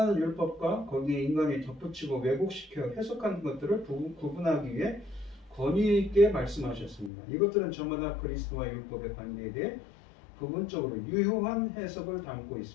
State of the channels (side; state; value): right; drops out; at 7.1 s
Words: 율법과 거기에 인간이 덧붙이고 왜곡시켜 해석한 것들을 구분하기 위해 권위 있게 말씀하셨습니다. 이것들은 저마다 그리스도와 율법의 관계에 대해 부분적으로 유효한 해석을 담고